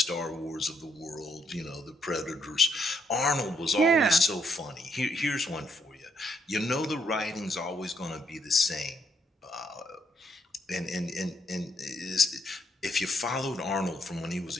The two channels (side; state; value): both; normal; correlation 0.74